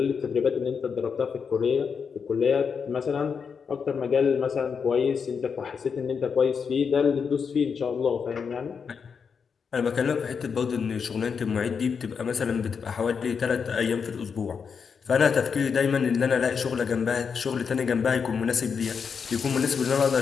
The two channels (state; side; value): quieter; right; 6.1 dB